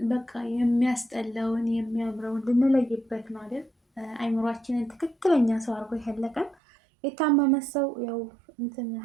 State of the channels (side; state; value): left; drops out; at 6.6 s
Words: በቃ የሚያስጠላውን የሚያምረውን ልንለይበት ነው አይደል? አይምሯችንን ትክክለኛ ሰው አድርጎ ያለቀን። የታመመ ሰው ያው እንትን